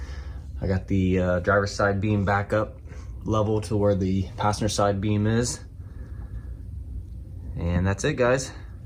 I got the driver's side beam back up level to where the passenger side beam is. And that's it, guys.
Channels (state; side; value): identical; both; correlation 1.00